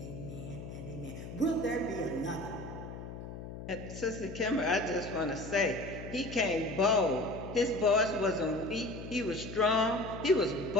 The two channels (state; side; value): noise; left; hum, 10 dB below the sound